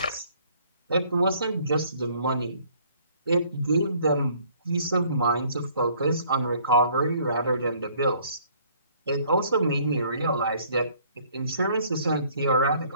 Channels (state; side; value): inverted; both; correlation -0.60